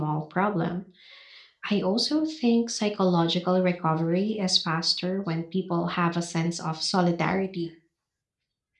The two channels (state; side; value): identical; both; correlation 1.00